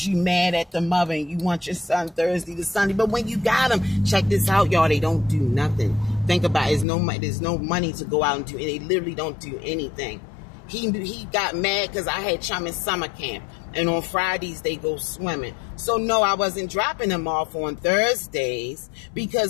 you mad at the mother and you want your son Thursday to Sunday. But when you got him, check this out, y'all, they don't do nothing. Think about it. There's no money to go out and do. They literally don't do anything. He got mad because I had Chum in summer camp, and on Fridays they go swimming. So no, I wasn't dropping him off on Thursdays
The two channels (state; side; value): drops out; right; at 6.9 s